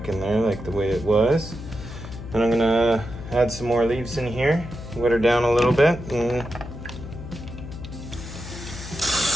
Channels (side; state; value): left; noise; hum, 11 dB below the sound